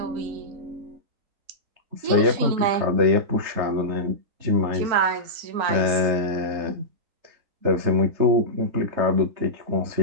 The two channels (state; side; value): late; left; 4.4 ms